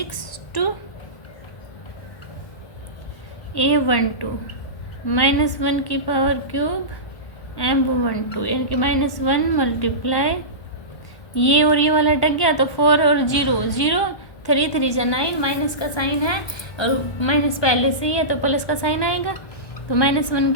2 A12 -1 की पावर क्यूब M12 यानी कि -1 मल्टीप्लाई ये और ये वाला अटक गया तो 4 और 0 0 3 3 जा 9 माइनस का साइन है और माइनस पहले से ही है तो प्लस का साइन आएगा तो -1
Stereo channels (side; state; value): right; late; 1.5 ms